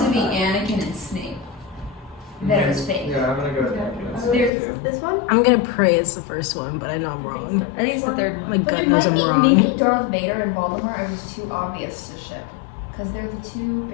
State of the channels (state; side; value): drops out; right; at 4.5 s